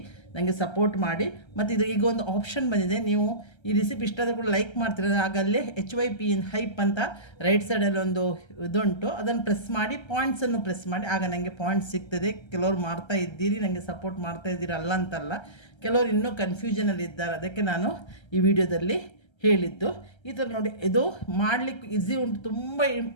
ನನಗೆ ಸಪೋರ್ಟ್ ಮಾಡಿ. ಮತ್ತು ಇದು ಈಗ ಒಂದು ಆಪ್ಷನ್ ಬಂದಿದೆ, ನೀವು ಈ ರೆಸಿಪಿ ಇಷ್ಟ ಆದರೂ ಕೂಡ ಲೈಕ್ ಮಾಡ್ತೀರ. ಆಗಲ್ಲೇ HYP ಇನ್ ಹೈಪ್ ಅಂತ ರೈಟ್ ಸೈಡಲ್ಲಿ ಒಂದು ಇದುಂಟು, ಅದನ್ನು ಪ್ರೆಸ್ ಮಾಡಿ ಪಾಯಿಂಟ್ಸನ್ನು ಪ್ರೆಸ್ ಮಾಡಿ, ಆಗ ನನಗೆ ಪಾಯಿಂಟ್ಸ್ ಸಿಗ್ತದೆ. ಕೆಲವರು ಮಾಡ್ತಾ ಇದ್ದೀರಿ, ನನಗೆ ಸಪೋರ್ಟ್ ಮಾಡ್ತಾ ಇದ್ದೀರಿ, ಅಲ್ಲ ಅಂತಲ್ಲ. ಕೆಲವರು ಇನ್ನೂ ಕನ್ಫ್ಯೂಷನಲ್ಲಿ ಇದ್ದಾರೆ, ಅದಕ್ಕೆ ನಾನು ಈ ವಿಡಿಯೋದಲ್ಲಿ ಹೇಳಿದ್ದು. ಈ ಥರ ನೋಡಿ, ಇದು ಮಾಡಲಿಕ್ಕೆ ಈಸಿ ಉಂಟು, ತುಂಬ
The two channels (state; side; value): late; right; 1.3 ms